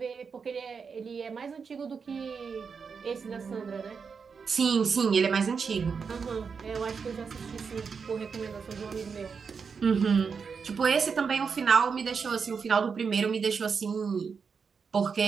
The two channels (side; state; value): left; quieter; 5.7 dB